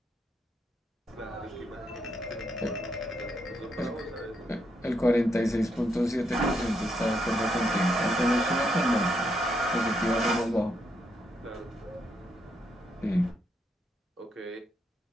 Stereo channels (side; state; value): both; normal; correlation 0.78